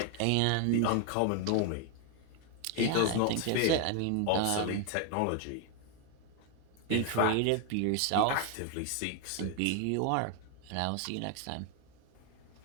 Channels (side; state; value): both; different; correlation 0.01